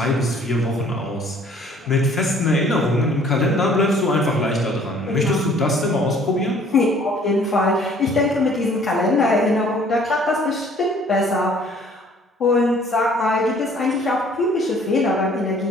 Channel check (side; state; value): both; normal; correlation 0.56